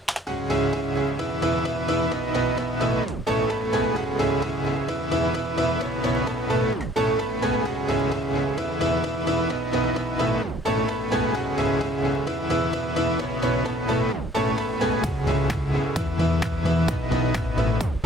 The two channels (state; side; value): normal; both; correlation 0.61